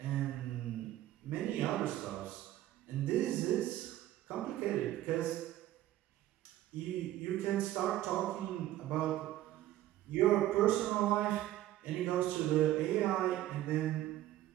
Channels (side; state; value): left; quieter; 14.1 dB